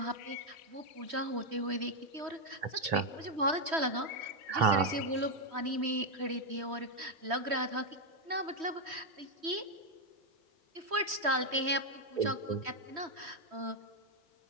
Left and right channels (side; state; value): left; late; 3.1 ms